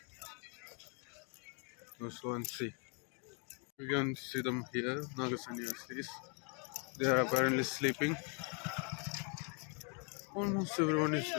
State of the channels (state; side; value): quieter; right; 37.2 dB